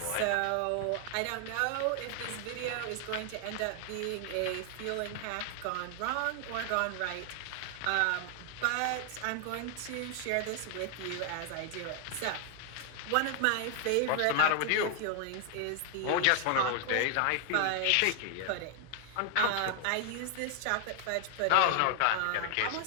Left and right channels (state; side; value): different; both; correlation 0.00